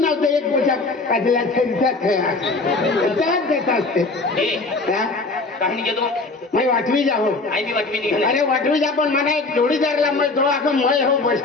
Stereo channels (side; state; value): right; quieter; 3.5 dB